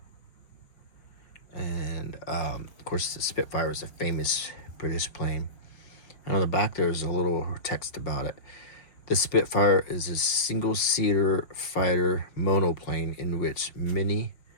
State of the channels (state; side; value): late; right; 5.6 ms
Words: and of course the Spitfire is a famous British plane. And on the back there's a little text about it. The Spitfire is a single-seater fighter monoplane in which many